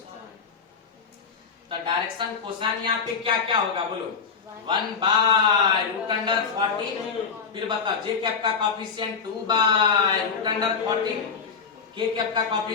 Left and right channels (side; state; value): right; quieter; 5.8 dB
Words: तो डायरेक्शन कोसाइन यहाँ पे क्या क्या होगा बोलो? 1 बाय रूट अंडर 14, फिर बताओ जे कैप का कोएफिशिएंट 2 बाय रूट अंडर 14, के कैप का